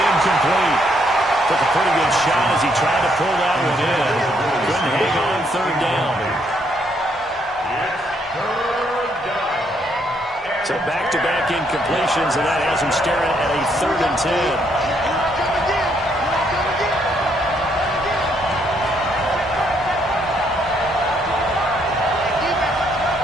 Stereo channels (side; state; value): both; normal; correlation 0.72